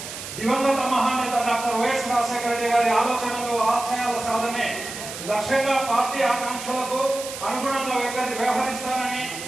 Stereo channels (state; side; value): noise; right; hiss, 10 dB below the sound